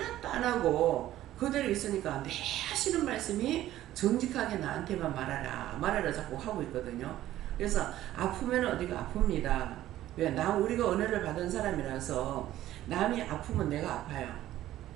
안 하고 그대로 있으니까 내 하시는 말씀이 정직하게 나한테만 말하라 자꾸 하고 있거든요. 그래서 아프면 어디가 아픕니다. 왜? 우리가 은혜를 받은 사람이라서 남이 아프면 내가 아파요.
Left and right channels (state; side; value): quieter; left; 13.8 dB